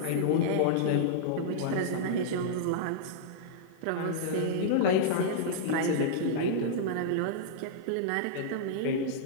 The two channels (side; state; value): both; different; correlation -0.02